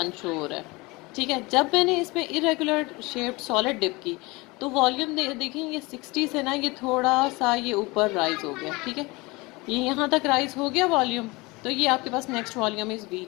शो हो रहा है, ठीक है। जब मैंने इसमें इरेगुलर शेप्ड सॉलिड डिप की तो वॉल्यूम देखें ये 60 से ना ये थोड़ा सा ये ऊपर राइज हो गया, ठीक है, ये यहाँ तक राइज हो गया वॉल्यूम। तो ये आपके पास नेक्स्ट वॉल्यूम इज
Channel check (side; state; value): right; quieter; 23.9 dB